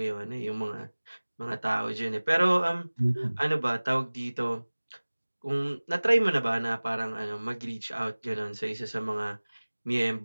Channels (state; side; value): inverted; both; correlation -1.00